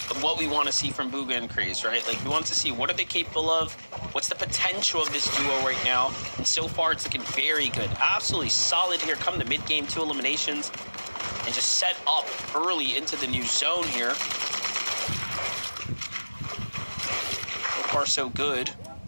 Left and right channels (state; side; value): inverted; both; correlation -1.00